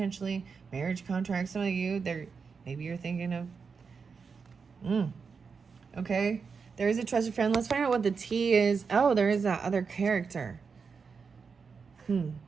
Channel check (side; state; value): left; quieter; 5.4 dB